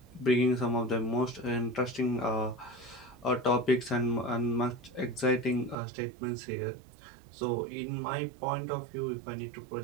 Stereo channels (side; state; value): left; drops out; at 5.8 s